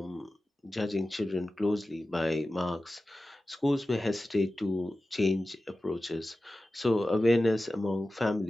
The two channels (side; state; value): both; normal; correlation 0.95